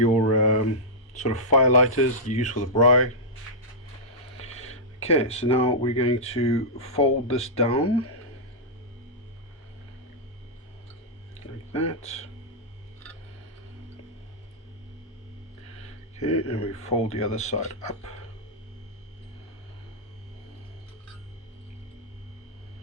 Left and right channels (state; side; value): normal; both; correlation -0.10